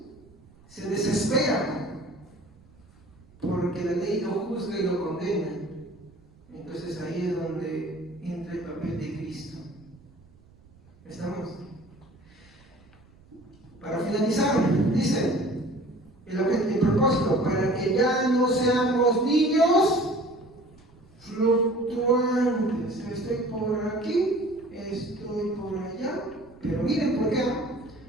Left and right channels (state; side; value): noise; right; rumble, 27 dB below the sound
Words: se desespera. Porque la ley lo juzga y lo condena. Entonces ahí es donde entra el papel de Cristo. ¿Estamos? Para finalizar, dice el propósito, para que ya no seamos niños fluctuantes. Estoy por aquí, estoy por allá, pero miren por qué.